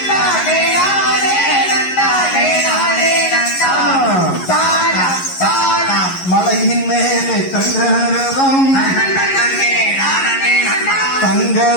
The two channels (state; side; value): late; right; 11 ms